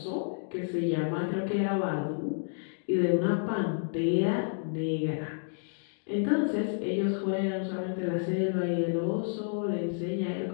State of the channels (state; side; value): silent; right; digital silence